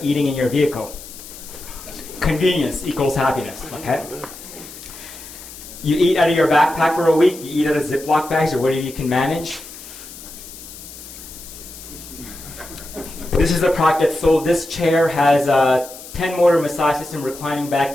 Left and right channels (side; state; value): left; noise; hiss, 15 dB below the sound